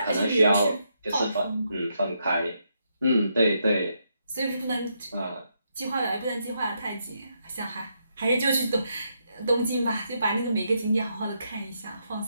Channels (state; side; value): inverted; both; correlation -0.79